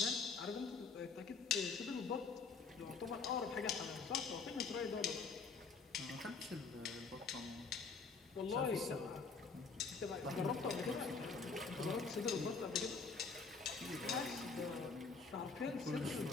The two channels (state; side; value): quieter; right; 4.7 dB